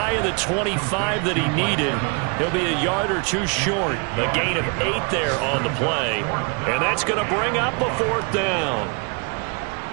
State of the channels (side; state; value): left; quieter; 34.0 dB